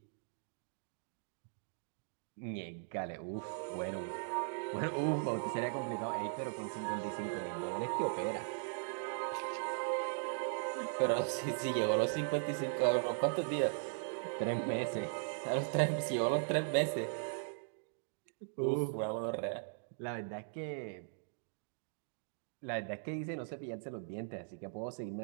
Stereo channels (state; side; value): silent; left; digital silence